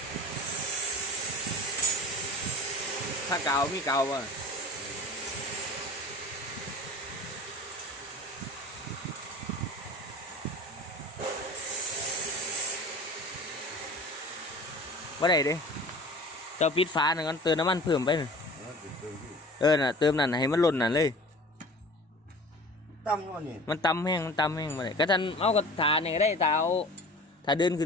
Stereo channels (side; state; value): both; normal; correlation 0.41